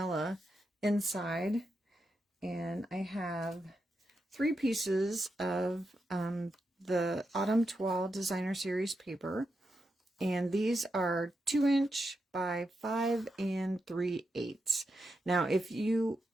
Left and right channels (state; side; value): normal; both; correlation 0.86